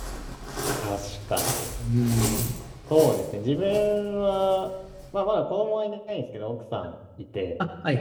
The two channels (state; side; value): identical; both; correlation 1.00